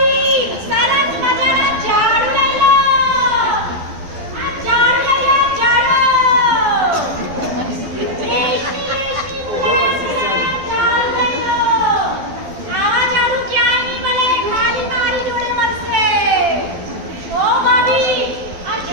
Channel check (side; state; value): left; late; 12 ms